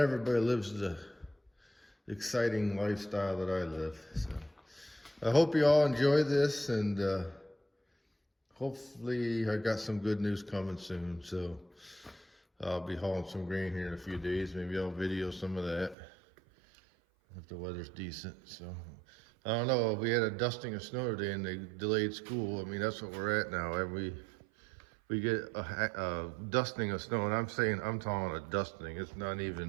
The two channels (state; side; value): drops out; left; at 16.0 s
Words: lives the exciting lifestyle that I live. So I hope you all enjoy this, and hopefully I got some good news coming soon. So I'll be hauling some grain here in a few days. Maybe I'll video some of that if the weather's decent. So I don't know. We had a dusting of snow today and they delayed school. I mean, that's what we're at now. We get a dusting of snow, and I'm talking a dusting. It's not